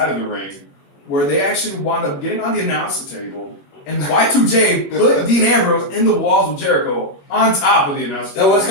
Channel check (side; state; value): right; late; 21 ms